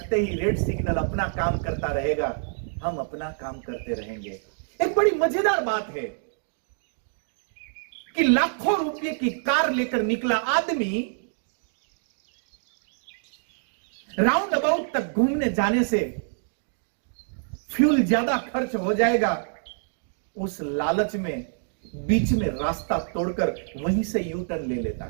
ही रेड सिग्नल अपना काम करता रहेगा, हम अपना काम करते रहेंगे। एक बड़ी मजेदार बात है कि लाखों रुपए की कार लेकर निकला आदमी राउंड अबाउट तक घूमने जाने से फ्यूल ज्यादा खर्च हो जाएगा, उस लालच में बीच में रास्ता तोड़कर वहीं से यू टर्न ले लेता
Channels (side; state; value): left; silent; digital silence